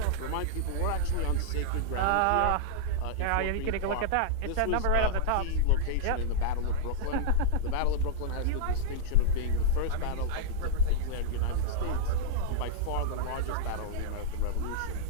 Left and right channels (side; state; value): both; different; correlation -0.02